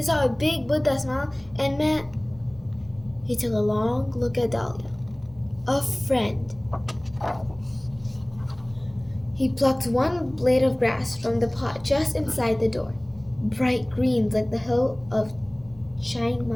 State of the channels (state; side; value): noise; right; hum, 27 dB below the sound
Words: saw a big Buddha smile, and met... He took a long look at Dahlia. A friend. He plucked one blade of grass from the pot just inside the door, bright greens like the hill of Chiang